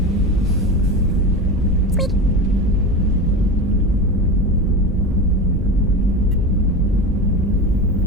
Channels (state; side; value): normal; both; correlation 0.25